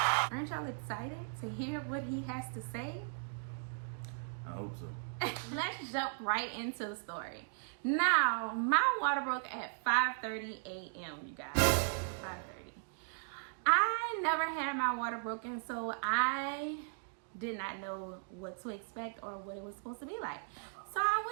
Aren't y'all excited to hear what he has to say? I hope so. Let's jump right into the story. Now, my water broke at 5:30 a.m., you guys. 5:30. I never had my water broken, so I did not know what to expect or what it was supposed to be like. So I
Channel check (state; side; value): silent; left; digital silence